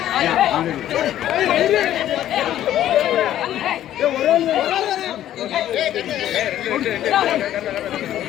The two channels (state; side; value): quieter; right; 12.2 dB